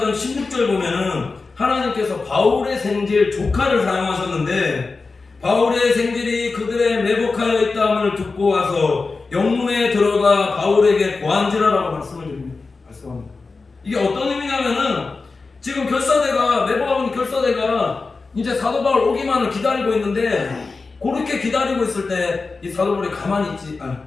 16절 보면은 하나님께서 바울의 생질 조카를 사용하셨는데 바울의 생질이 그들의 매복하여 있다함을 듣고 와서 영문에 들어가 바울에게 고한지라라고 말씀합니다. 이게 어떤 의미냐면은 지금 결사대가 매복하고 있는 결사대가 이제 사도 바울 오기만을 기다리고 있는데 그렇게 기다리고 있을 때 이 사도 바울이 가만히 있지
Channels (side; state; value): right; quieter; 4.1 dB